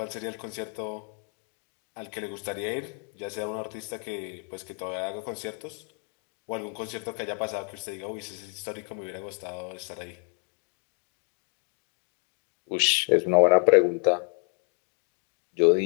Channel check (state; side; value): quieter; right; 38.1 dB